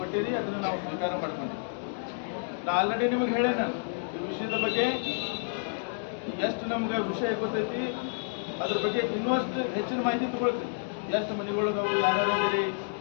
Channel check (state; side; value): silent; right; digital silence